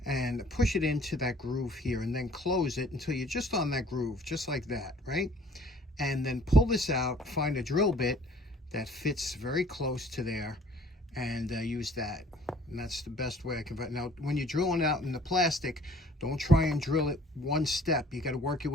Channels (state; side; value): normal; both; correlation 0.54